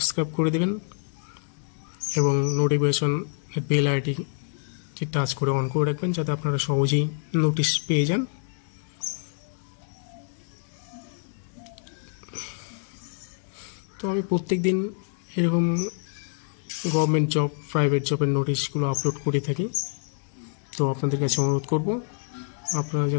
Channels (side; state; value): right; silent; digital silence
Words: করে দেবেন এবং নোটিফিকেশন বেল আইডিটি টাচ করে অন করে রাখবেন, যাতে আপনারা সহজেই নোটিশ পেয়ে যান। তো আমি প্রত্যেক দিন এরকম গভর্নমেন্ট জব, প্রাইভেট জবের নোটিশগুলো আপলোড করে থাকি। তো আপনাদের কাছে অনুরোধ করব আপনারা